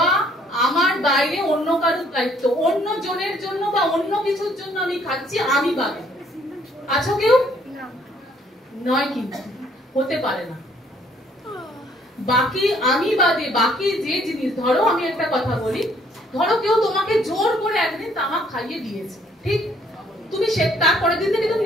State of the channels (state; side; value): normal; both; correlation 0.64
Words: আমার বাইরে অন্য কারোর দায়িত্ব, অন্য জনের জন্য বা অন্য কিছুর জন্য আমি খাচ্ছি, আমি বাদে আছো কেউ? নয়, কিন্তু হতে পারে না। বাকি আমি বাদে বাকি যে জিনিস, ধরো আমি একটা কথা বলি, ধরো কেউ তোমাকে জোর করে একদিন তামাক খাইয়ে দিয়েছে, ঠিক? তুমি তারপরের দিন থেকে তুমি